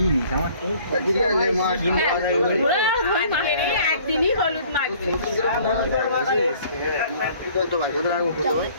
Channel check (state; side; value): inverted; both; correlation -0.54